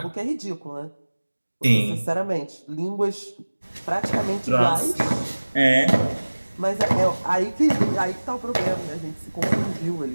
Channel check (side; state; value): both; inverted; correlation -1.00